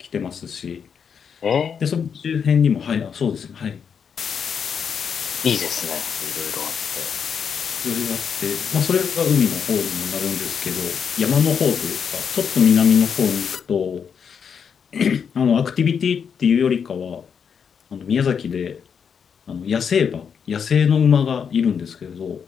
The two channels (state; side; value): quieter; right; 7.0 dB